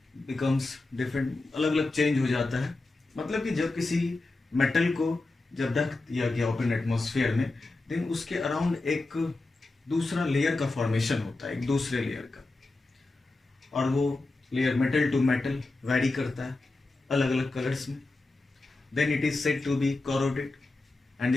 becomes different, अलग अलग change हो जाता है। मतलब कि जब किसी metal को जब रख दिया गया ओपन एटमॉस्फेयर में, देन उसके अराउंड एक दूसरा लेयर का फॉर्मेशन होता है, एक दूसरे लेयर का, और वो layer metal to metal vary करता है अलग अलग कलर्स में। Then it is said to be corroded and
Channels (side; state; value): right; quieter; 3.2 dB